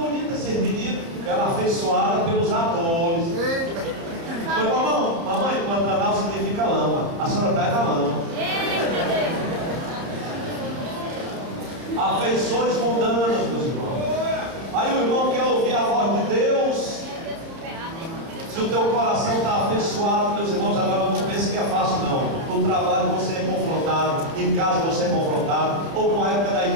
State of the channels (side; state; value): left; late; 30 ms